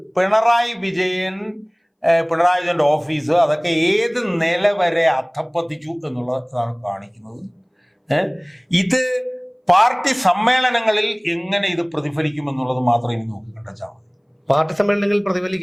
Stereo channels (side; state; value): both; identical; correlation 1.00